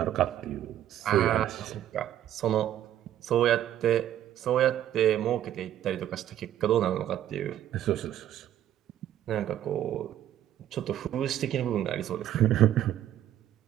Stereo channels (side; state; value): left; quieter; 11.7 dB